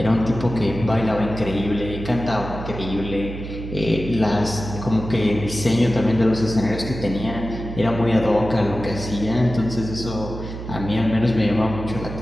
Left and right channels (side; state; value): right; noise; hum, 9 dB below the sound